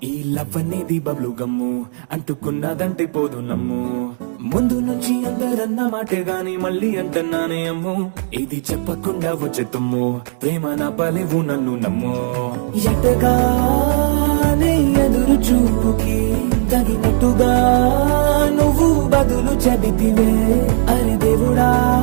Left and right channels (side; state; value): left; silent; digital silence